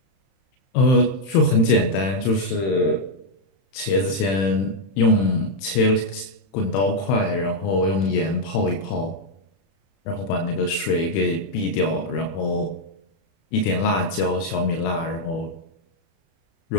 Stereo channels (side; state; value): right; late; 31 ms